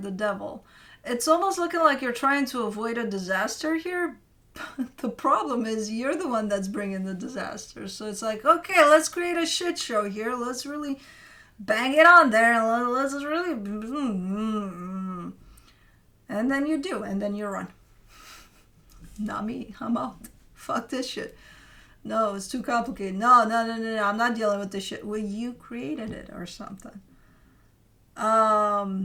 Devil. It's almost looking like you're trying to avoid a disaster here. The problem is you're the one that's bringing the disaster. So it's like, okay, let's create a shit show here. Let's really bang it on there. And let's really... And then you do. And then you run. Not me. I'm out. Fuck this shit. No, it's too complicated. No. I'm not dealing with this shit. Well, you created it or something.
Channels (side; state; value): both; identical; correlation 1.00